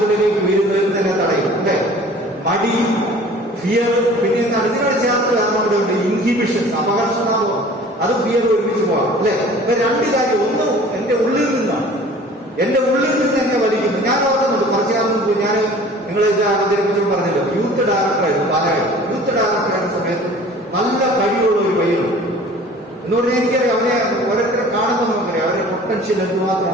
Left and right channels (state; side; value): normal; both; correlation 0.47